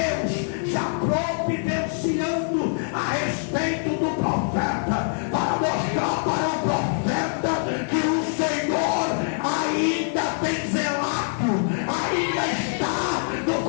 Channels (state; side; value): silent; right; digital silence